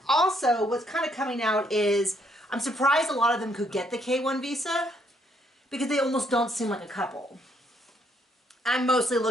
also, what's kind of coming out is, I'm surprised a lot of them could get the K-1 visa because they almost don't seem like a couple. I'm mostly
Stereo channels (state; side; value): normal; both; correlation 0.71